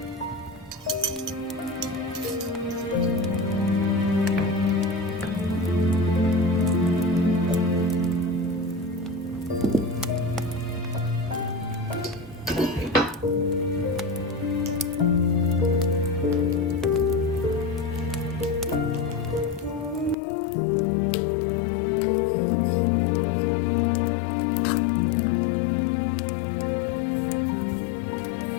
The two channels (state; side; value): drops out; right; at 20.2 s